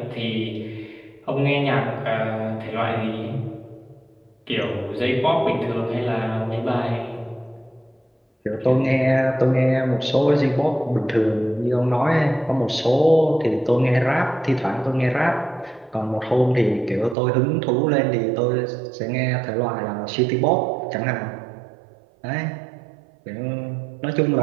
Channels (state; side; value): drops out; left; at 17.2 s